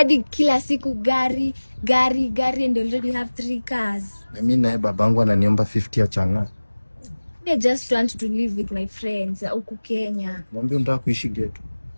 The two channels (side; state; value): both; inverted; correlation -1.00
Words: kila siku gari and already have 3 cars. Na mimi naye babangu ananiomba 50 ya changa. I just want to live with my friends huku Kenya. Mwambie unataka kuishi ghetto.